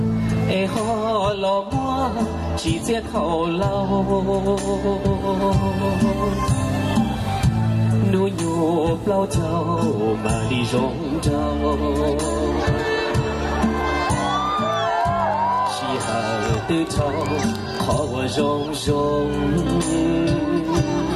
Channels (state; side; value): identical; both; correlation 1.00